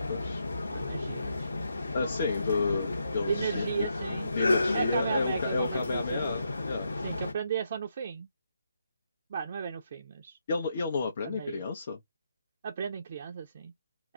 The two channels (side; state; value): both; inverted; correlation -0.80